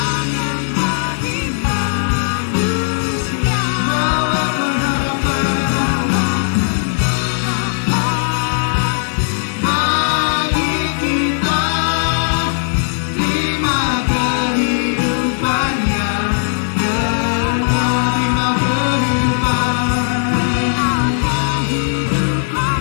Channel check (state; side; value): silent; right; 66 dB below the other